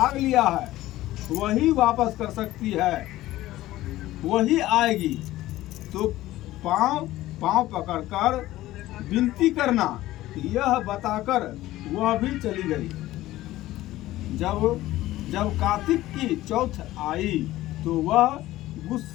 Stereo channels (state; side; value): quieter; right; 16.0 dB